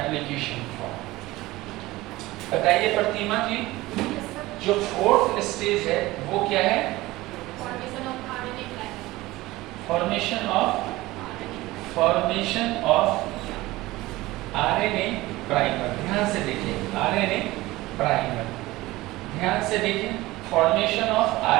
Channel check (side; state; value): left; quieter; 18.8 dB